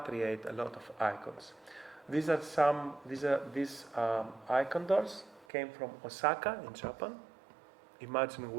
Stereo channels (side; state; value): left; drops out; at 5.5 s